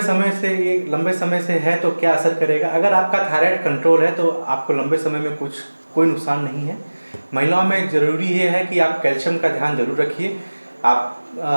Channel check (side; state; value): both; inverted; correlation -1.00